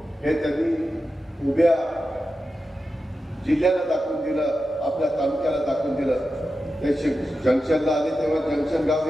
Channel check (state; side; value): normal; both; correlation 0.91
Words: हे त्यांनी उभ्या जिल्ह्याला दाखवून दिलं, आपल्या तालुक्याला दाखवून दिलं. ते जंक्शनला आले तेव्हा जंक्शन गाव